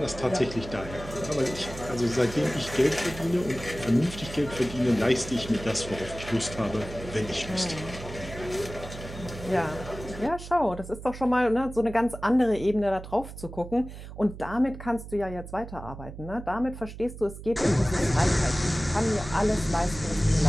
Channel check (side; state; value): right; noise; hum, 12 dB below the sound